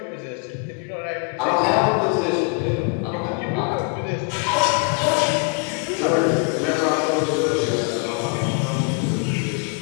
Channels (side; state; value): right; quieter; 33.7 dB